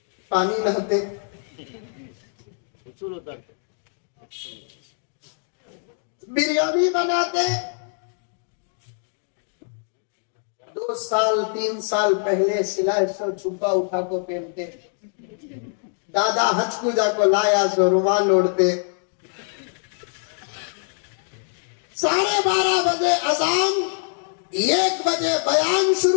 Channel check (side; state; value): right; silent; digital silence